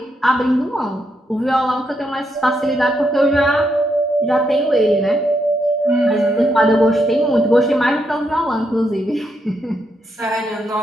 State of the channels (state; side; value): normal; both; correlation 0.79